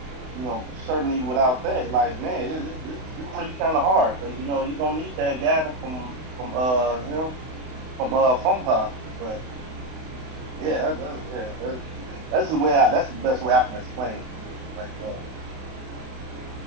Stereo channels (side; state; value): left; late; 32 ms